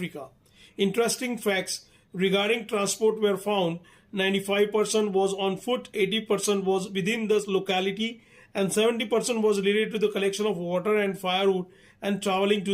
Interesting facts regarding transport were found. 95% was on foot, 80% was within the locality, and 70% was related to the collection of water and firewood and traveling to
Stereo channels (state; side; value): identical; both; correlation 1.00